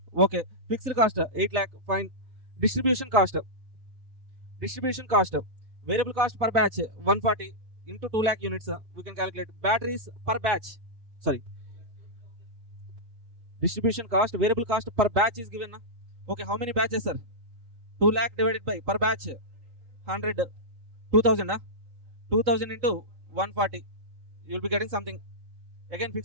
Okay. Fixed cost 8 lakh. Fine. Distribution cost. Distribution cost, variable cost per batch 140 into 2 lakh units. We can calculate batteries per batch. Sorry. Distribution cost, variable cost per batch is given. Okay, how many batches, sir? 2 lakh divided by per batch 100, 2000. 2000 into 140. You will be getting something. Again,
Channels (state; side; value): late; left; 3.7 ms